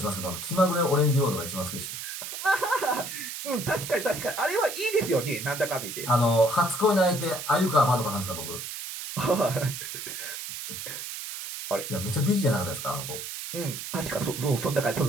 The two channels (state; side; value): noise; right; hiss, 7 dB below the sound